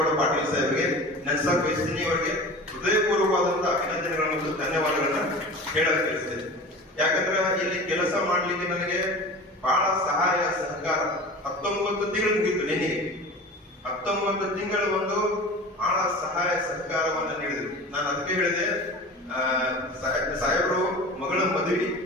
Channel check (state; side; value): normal; both; correlation 0.36